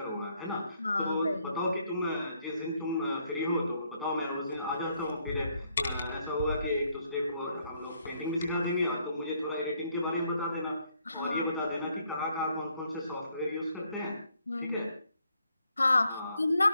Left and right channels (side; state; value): both; inverted; correlation -0.71